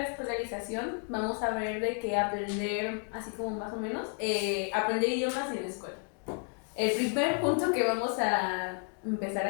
escolarización, vamos a ver de qué aprender, así como más o menos, aprender idiomas en la escuela. El primer punto que vamos a empezar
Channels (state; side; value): quieter; right; 38.2 dB